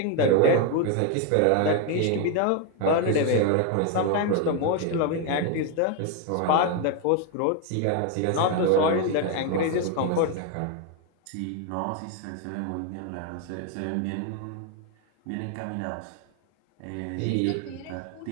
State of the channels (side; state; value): both; different; correlation 0.01